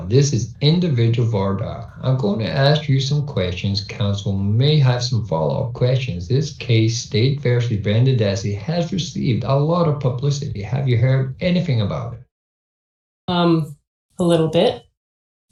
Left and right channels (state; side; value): identical; both; correlation 1.00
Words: this is individual Voir Dire. I'm going to ask you some questions. Counsel may have some follow-up questions. This case, State versus Brendan Dassey, has received a lot of publicity. Have you heard anything about it? A little bit.